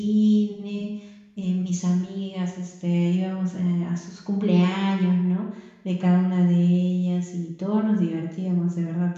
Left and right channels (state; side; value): identical; both; correlation 1.00